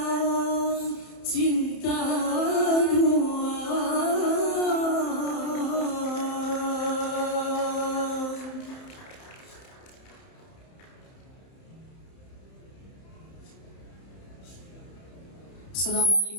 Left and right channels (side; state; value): right; late; 31 ms